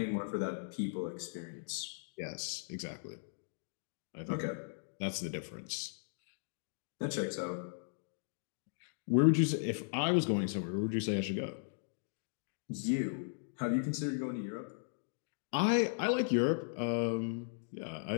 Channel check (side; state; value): right; silent; digital silence